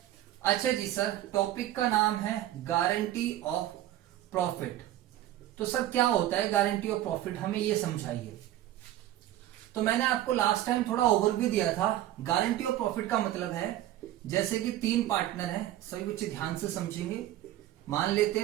अच्छा जी सर, टॉपिक का नाम है गारंटी ऑफ प्रॉफिट। तो सर क्या होता है गारंटी ऑफ प्रॉफिट, हमें ये समझाइए। तो मैंने आपको लास्ट टाइम थोड़ा ओवरव्यू दिया था। गारंटी ऑफ प्रॉफिट का मतलब है, जैसे कि 3 पार्टनर हैं, सभी बच्चे ध्यान से समझेंगे। मान लेते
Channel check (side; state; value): left; quieter; 13.6 dB